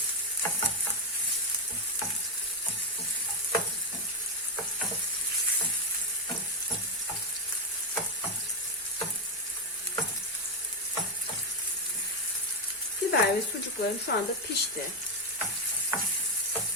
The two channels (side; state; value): both; normal; correlation 0.04